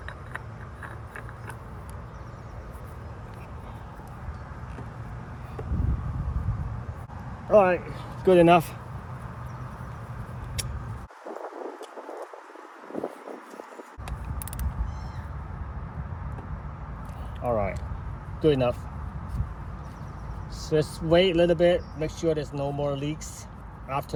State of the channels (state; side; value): identical; both; correlation 1.00